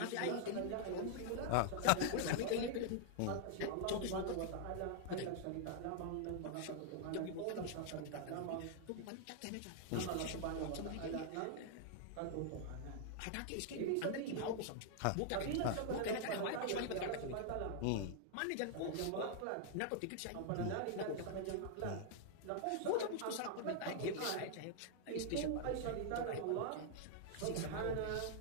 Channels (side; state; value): both; different; correlation -0.01